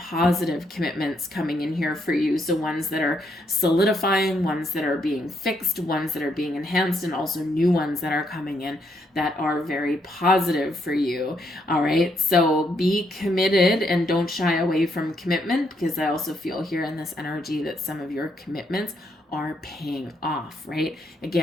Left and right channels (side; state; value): both; normal; correlation 0.75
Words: commitments coming in here for you. So ones that are solidifying, ones that are being fixed, ones that are being enhanced, and also new ones that are coming in that are very positive for you. All right, so be committed and don't shy away from commitment, because I also feel here in this energy that some of your commitments are paying off, right?